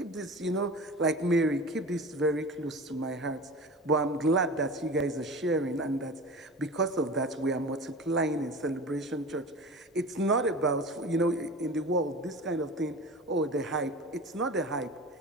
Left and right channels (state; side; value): normal; both; correlation 0.34